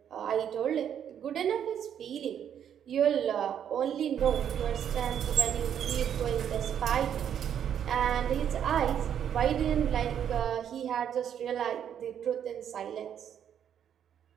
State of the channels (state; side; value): quieter; left; 9.1 dB